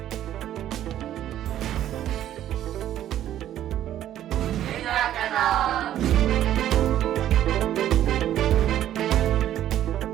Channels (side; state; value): left; quieter; 11.9 dB